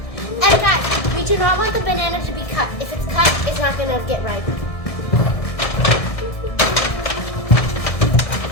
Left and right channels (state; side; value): late; right; 1.6 ms